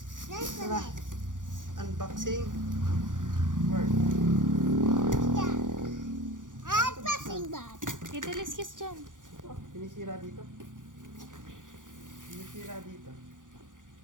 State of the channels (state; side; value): late; left; 0.88 ms